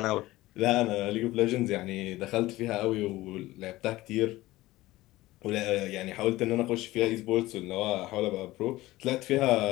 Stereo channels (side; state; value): right; quieter; 17.9 dB